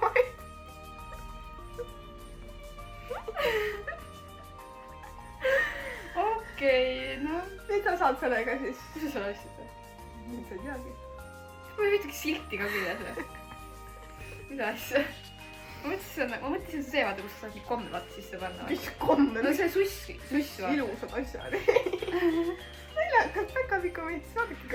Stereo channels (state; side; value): identical; both; correlation 1.00